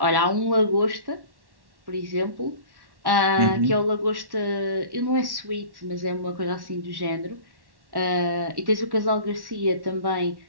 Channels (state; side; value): late; left; 1.1 ms